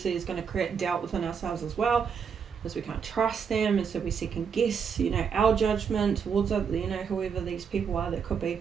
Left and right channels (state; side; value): quieter; left; 6.7 dB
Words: is going to create doubt within ourselves as well, because we can't trust them, and so we second guess, you know, our judgment towards, you know, whoever these people are that could